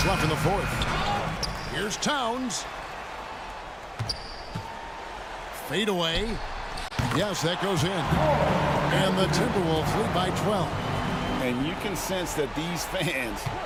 left in the fourth. Here's Towns. Fade away. Yes, that goes in. And the Timberwolves lead by 12. And you can sense that these fans,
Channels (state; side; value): identical; both; correlation 1.00